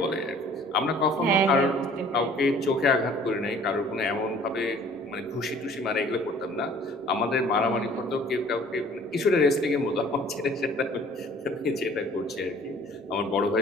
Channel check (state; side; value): normal; both; correlation 0.52